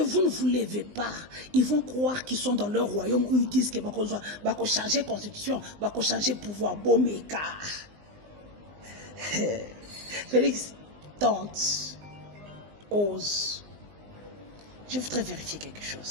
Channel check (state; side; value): late; left; 19 ms